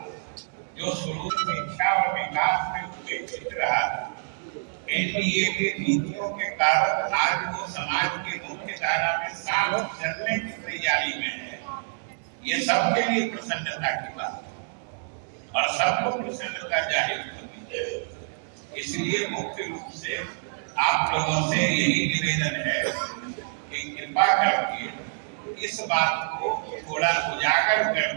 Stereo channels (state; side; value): silent; left; 60 dB below the other